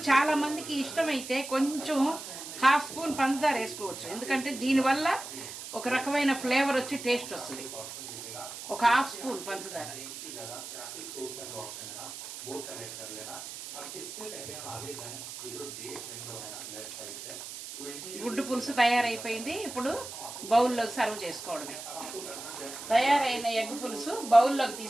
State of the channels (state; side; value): noise; right; hiss, 10 dB below the sound